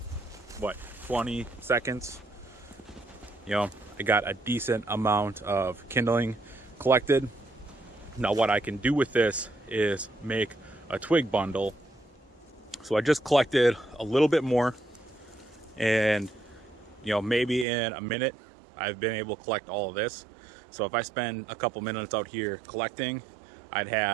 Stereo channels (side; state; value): left; drops out; at 17.7 s